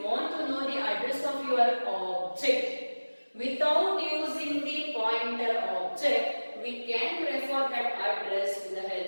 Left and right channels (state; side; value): inverted; both; correlation -1.00